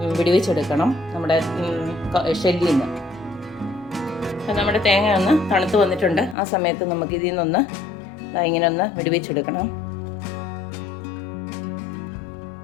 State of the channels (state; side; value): drops out; right; at 6.4 s